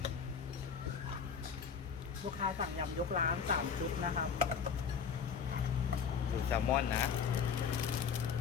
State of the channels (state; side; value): quieter; right; 6.5 dB